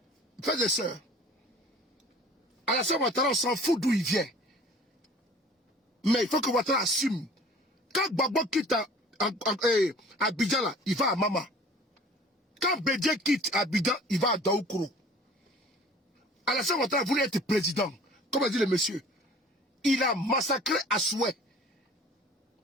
Frères et sœurs, Alassane Ouattara, on s'en fout d'où il vient. Mais il faut que Ouattara assume. Quand Gbagbo quitte Abidjan, là, il va à Mama. Quand Bédié quitte Abidjan, il va à Daoukoro. Alassane Ouattara voulait être président. Comme a dit le monsieur. Il a massacré à souhait.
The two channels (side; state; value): both; normal; correlation 0.47